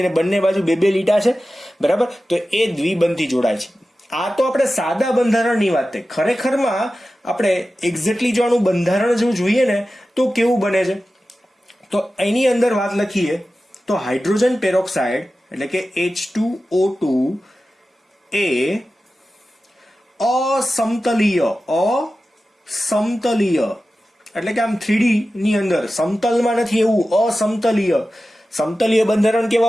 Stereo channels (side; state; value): both; normal; correlation 0.94